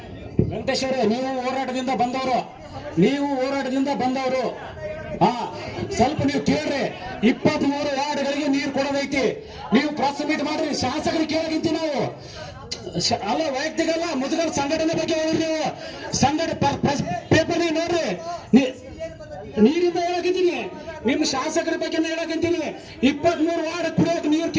ವೆಂಕಟೇಶ್ ಅವರೇ, ನೀವು ಹೋರಾಟದಿಂದ ಬಂದವರು ಸ್ವಲ್ಪ ನೀವು ಕೇಳ್ರಿ. 23 ವಾರ್ಡ್ಗಳಿಗೆ ನೀರು ಕೊಡೋದೈತಿ, ನೀವು ಪ್ರೆಸ್ ಮೀಟ್ ಮಾಡ್ರಿ, ಶಾಸಕರಿಗೆ ಕೇಳೋದಿಂತಿ ನಾವು ಅಲ್ಲ, ವೈಯಕ್ತಿಕ ಅಲ್ಲ, ಮುದುಗಲ್ ಸಂಘಟನೆ ಬಗ್ಗೆ ಹೋಗ್ರಿ. ನೀವು ಪೇಪರ್ ನೋಡ್ರಿ, ನೀರಿಂದ ಹೇಳಕಂತೀನಿ, ನಿಮ್ಮ ಶಾಸಕರ ಬಗ್ಗೆ ಹೇಳಕಂತೀನಿ. 23 ವಾರ್ಡ್ ಕುಡಿಯೋಕೆ ನೀರು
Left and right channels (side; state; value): both; identical; correlation 1.00